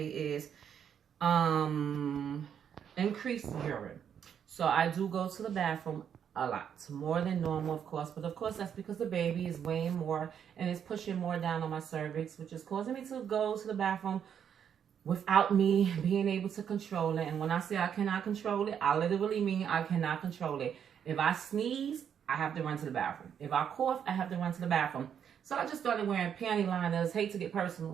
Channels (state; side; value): quieter; left; 8.3 dB